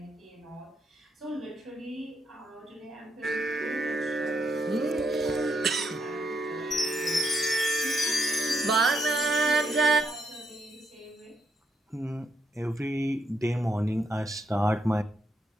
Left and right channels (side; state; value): both; normal; correlation 0.78